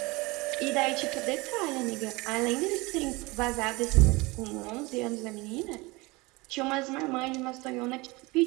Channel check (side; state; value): left; quieter; 23.9 dB